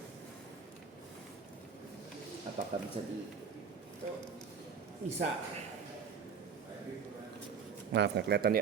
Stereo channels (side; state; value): left; quieter; 6.2 dB